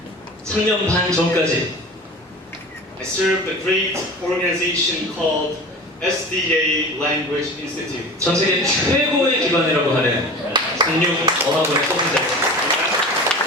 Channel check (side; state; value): both; normal; correlation 0.36